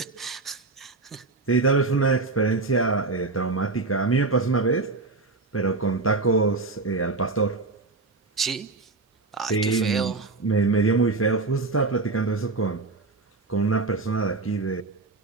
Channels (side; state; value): left; quieter; 3.7 dB